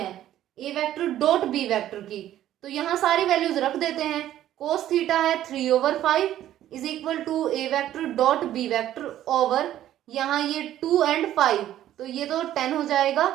a vector dot b vector की, तो यहां सारी वैल्यूज रख देते हैं। कोस थीटा है 3/5 is equal to a vector dot b vector over यहाँ ये 2 and 5, तो ये तो 10 हो जाएगा।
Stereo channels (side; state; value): left; quieter; 12.4 dB